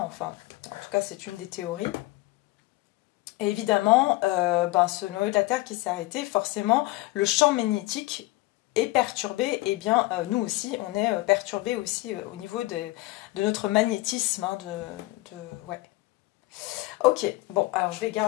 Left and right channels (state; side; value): quieter; right; 20.1 dB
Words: en tout cas, c'est une des théories. Et évidemment, ce noyau de la Terre qui s'est arrêté, forcément, le champ magnétique est perturbé. Et bien, nous aussi, on est perturbé aussi au niveau de notre magnétisme. Hein, ouais. Ok, bon, alors je vais